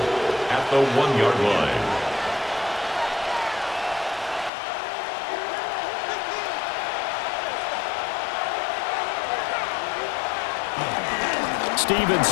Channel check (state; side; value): drops out; right; at 4.5 s